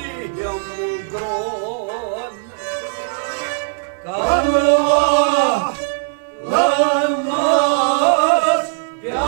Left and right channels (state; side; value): silent; left; digital silence